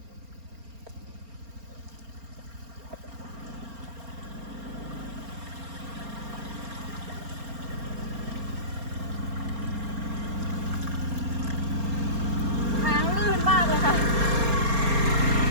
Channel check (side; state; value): left; late; 4.3 ms